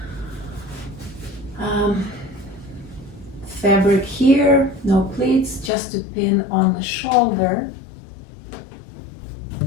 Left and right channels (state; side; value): drops out; right; at 5.7 s